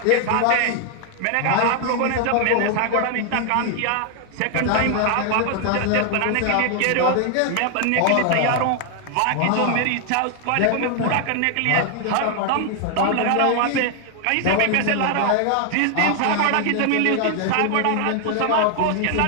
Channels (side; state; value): both; different; correlation 0.00